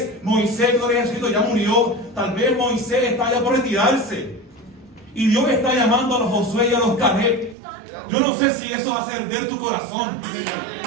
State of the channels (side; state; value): left; drops out; at 7.6 s